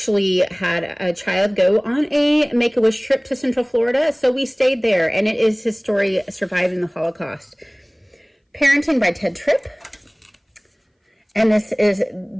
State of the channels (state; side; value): identical; both; correlation 1.00